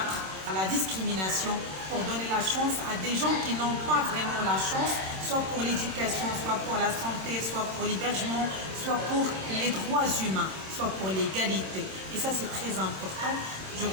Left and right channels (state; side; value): late; left; 26 ms